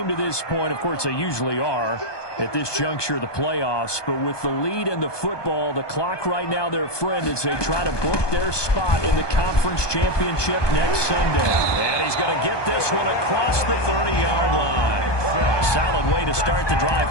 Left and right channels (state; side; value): late; right; 1.2 ms